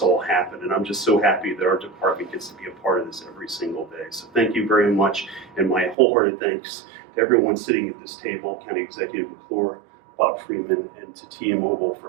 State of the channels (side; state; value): left; drops out; at 6.0 s